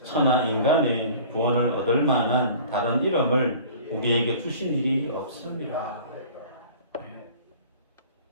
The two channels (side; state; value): both; inverted; correlation -0.45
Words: 천하 인간의 구원을 얻을 만한 다른 이름을 우리에게 주신 일이 없습니다.